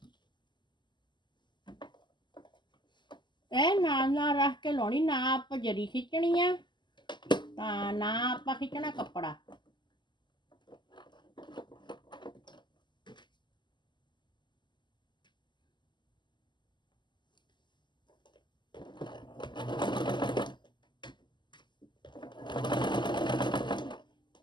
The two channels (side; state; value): right; late; 0.22 ms